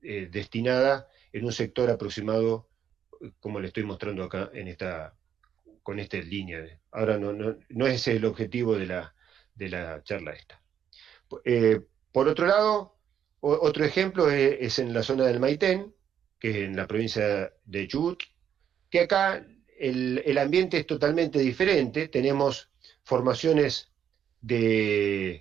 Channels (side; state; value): left; quieter; 9.0 dB